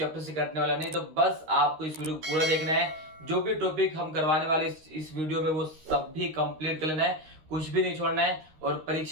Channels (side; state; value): left; late; 13 ms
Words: से कटने वाला नहीं। तो बस आपको इस वीडियो को पूरा देखना है। जो भी टॉपिक हम करवाने वाले इस वीडियो में वो सब भी कंप्लीट कर लेना है, कुछ भी नहीं छोड़ना है, और